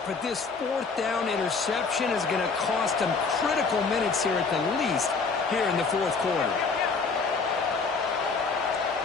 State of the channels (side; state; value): right; quieter; 4.7 dB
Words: but this fourth down interception is going to cost them critical minutes here at the least here in the fourth quarter.